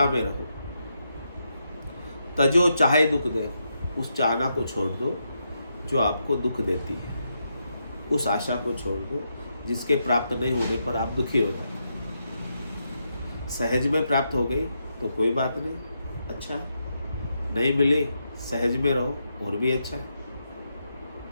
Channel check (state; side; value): inverted; both; correlation -0.82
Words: में रहो। तजो चाहे दुख दे, उस चाहना को छोड़ दो जो आपको दुख देती है, उस आशा को छोड़ दो जिसके प्राप्त नहीं होने पर आप दुखी हो जाते। सहज में प्राप्त हो गई तो कोई बात नहीं, अच्छा है, नहीं मिली सहज में रहो और भी अच्छा है।